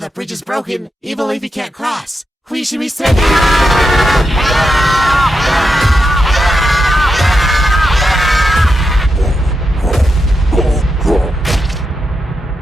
bridge is broken, evil Leafy can't cross. We should be sending...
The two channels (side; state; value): both; normal; correlation 0.86